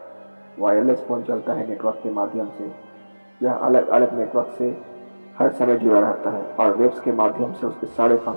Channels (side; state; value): both; inverted; correlation -1.00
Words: वायरलेस फ़ोन चलता है नेटवर्क के माध्यम से। यह अलग अलग नेटवर्क से हर समय जुड़ा रहता है और वेब्स के माध्यम से उसके सारे